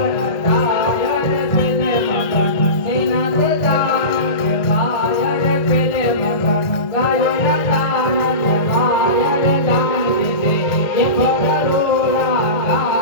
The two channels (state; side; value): late; right; 1.8 ms